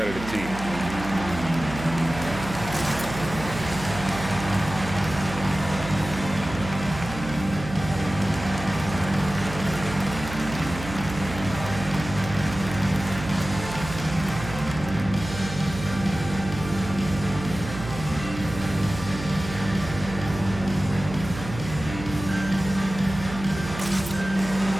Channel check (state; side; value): noise; right; hum, 10 dB below the sound